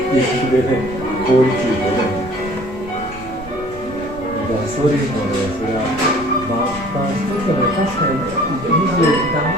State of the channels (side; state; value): both; normal; correlation 0.52